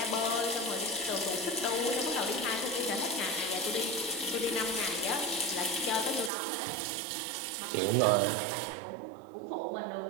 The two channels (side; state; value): left; drops out; at 6.3 s